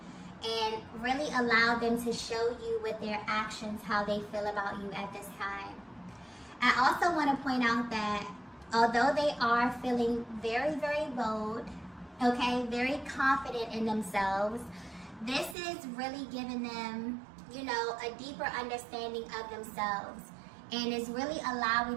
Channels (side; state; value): left; drops out; at 15.6 s